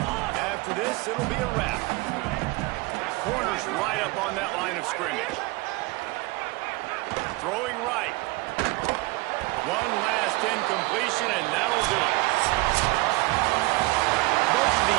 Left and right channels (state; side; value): quieter; left; 23.0 dB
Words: After this, it'll be a wrap. Corner's right up on that line of scrimmage. Throwing right. One last incompletion, and that'll do it. Both of